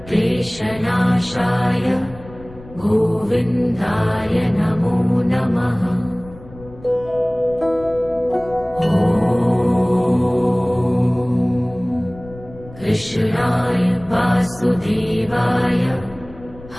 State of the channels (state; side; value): noise; left; rumble, 19 dB below the sound